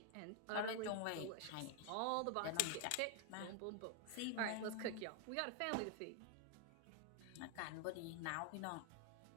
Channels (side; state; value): both; different; correlation 0.00